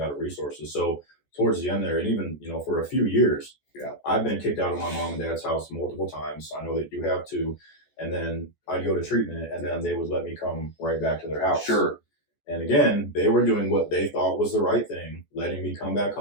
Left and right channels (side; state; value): right; late; 14 ms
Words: of resources. So towards the end there, and even, for a few years, I've been kicked out of my mom and dad's house multiple times. I know that you have too. And then I'd go to treatment, and then they would let me come right back to their house. Sure. And again, they were doing what they thought was the right thing, letting me come back